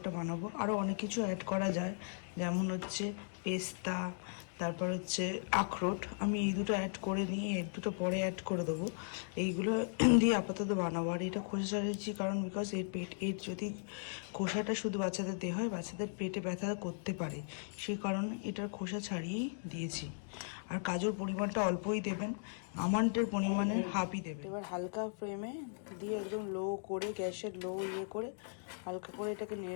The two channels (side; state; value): right; silent; digital silence